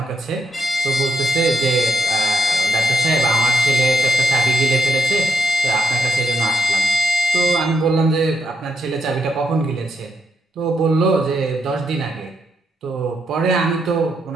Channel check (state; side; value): normal; both; correlation 0.79